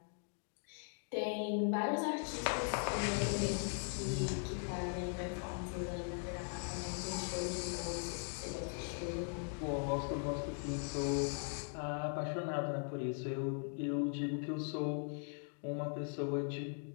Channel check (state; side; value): silent; right; 51 dB below the other